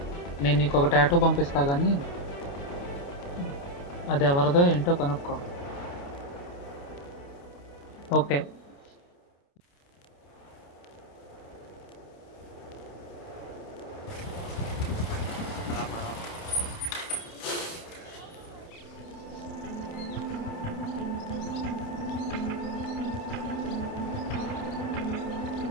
నేను నీకు ఒక టాటూ పంపిస్తా కానీ అది ఎవరిదో ఏంటో కనుక్కో. ఓకే.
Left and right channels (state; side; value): late; right; 29 ms